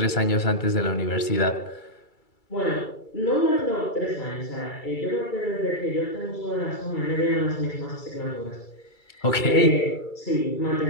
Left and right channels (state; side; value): late; right; 2.3 ms